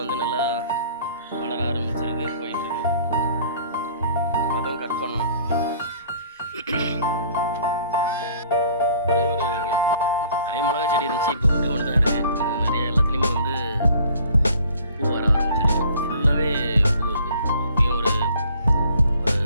வந்து நல்லா வளர ஆரம்பிச்சிருக்கு, போயிட்டுருக்கு. அதுவும் கட் பண்ணணும். நிறைய மிளகா செடி இருந்துச்சு, இப்போ ஒன்று தான் இருக்குது. நிறைய எல்லாத்துலேயுமே வந்து பூ வர ஆரம்பிச்சிருக்கு. ஃபுல்லாகவே பூ இருக்குது. இப்பயும் ஒரு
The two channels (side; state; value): both; inverted; correlation -0.54